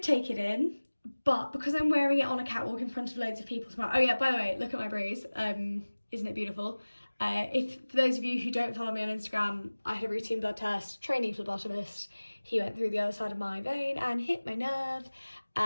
take it in, but because I'm wearing it on a catwalk in front of loads of people tomorrow. Oh yeah, by the way, look at my bruise. Isn't it beautiful? For those of you who don't follow me on Instagram, I had a routine blood test, trainee phlebotomist. He went through the other side of my vein and hit my nerve.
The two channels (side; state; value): both; inverted; correlation -1.00